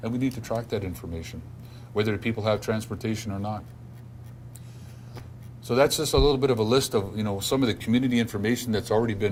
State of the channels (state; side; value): identical; both; correlation 1.00